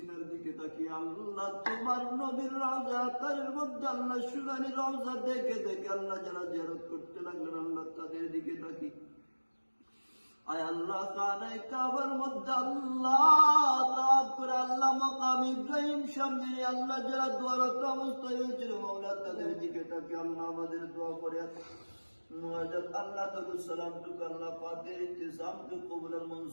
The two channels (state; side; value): inverted; both; correlation -1.00